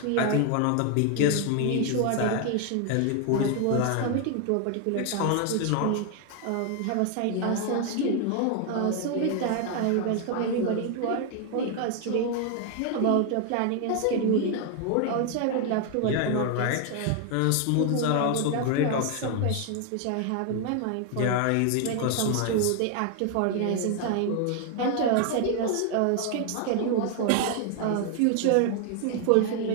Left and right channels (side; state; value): both; different; correlation 0.00